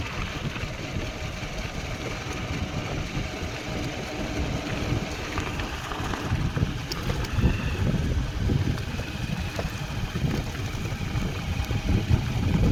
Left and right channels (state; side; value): identical; both; correlation 1.00